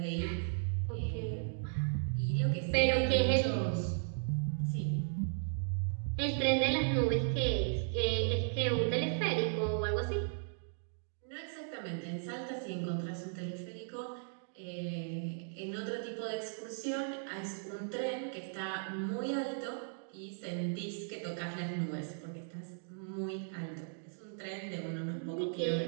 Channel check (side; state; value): left; silent; digital silence